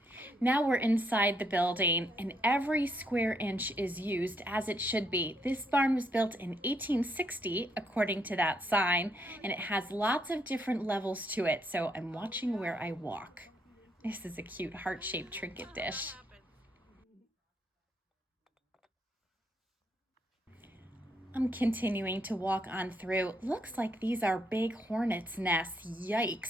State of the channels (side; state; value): both; normal; correlation 0.74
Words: Now we're inside the building, and every square inch is used as it should be. This barn was built in 1860, according to that sign, and it has lots of different levels to it, so I'm watching where I walk. This is a cute heart-shaped trinket dish. I'm continuing to walk on through. Looks like these are big hornets' nests.